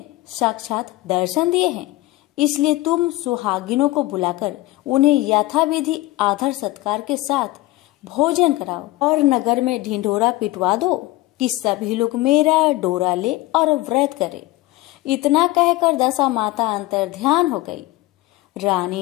साक्षात दर्शन दिए हैं, इसलिए तुम सुहागिनों को बुलाकर उन्हें यथाविधि आदर सत्कार के साथ भोजन कराओ और नगर में ढिंढोरा पिटवा दो कि सभी लोग मेरा डोरा ले और व्रत करे। इतना कहकर दशा माता अंतर्ध्यान हो गई।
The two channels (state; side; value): quieter; right; 18.4 dB